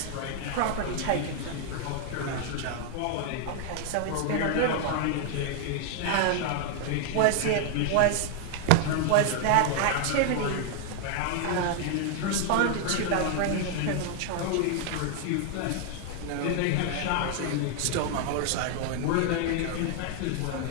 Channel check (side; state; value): both; different; correlation 0.00